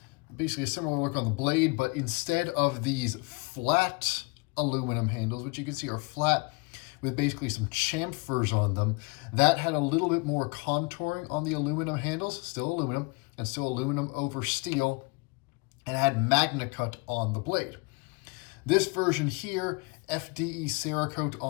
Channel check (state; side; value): quieter; right; 28.6 dB